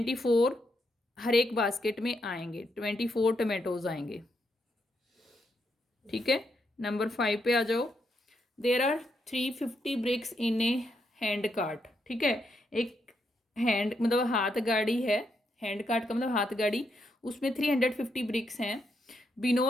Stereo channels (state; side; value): normal; both; correlation 0.80